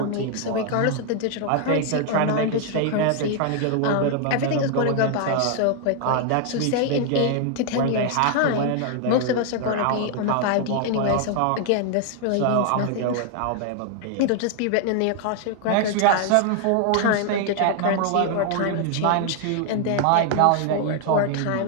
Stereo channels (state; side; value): different; both; correlation 0.00